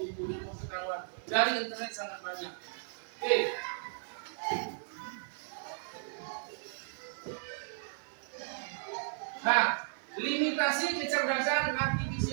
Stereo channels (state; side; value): silent; left; digital silence